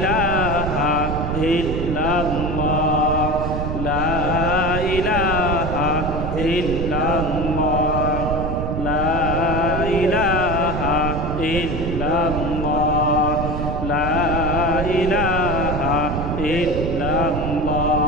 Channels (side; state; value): right; noise; rumble, 3 dB below the sound